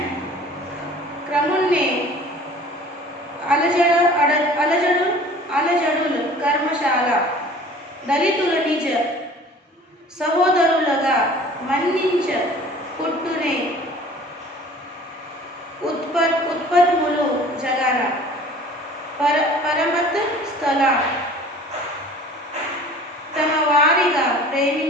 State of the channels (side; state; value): both; normal; correlation 0.47